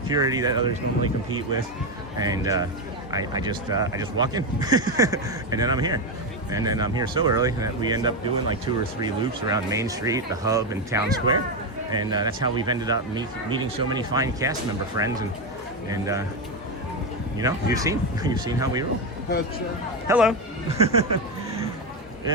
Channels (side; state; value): both; normal; correlation 0.10